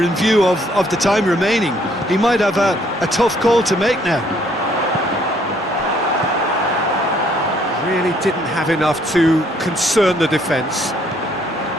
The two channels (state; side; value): normal; both; correlation 0.65